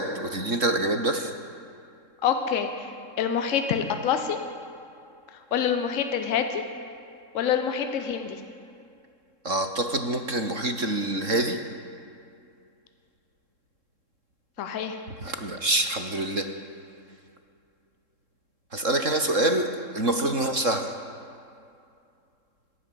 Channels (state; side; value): late; left; 3.7 ms